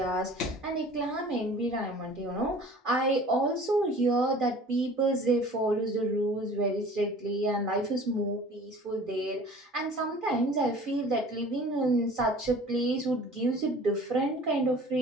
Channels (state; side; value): normal; both; correlation 0.46